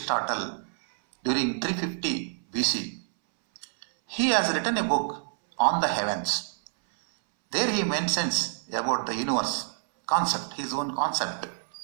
during 350 BC, he has written a book on the heavens. There he mentions about the universe concept, his own concept.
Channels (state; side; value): silent; left; 60 dB below the other